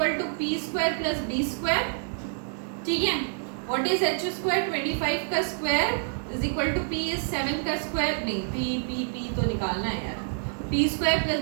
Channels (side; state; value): left; silent; digital silence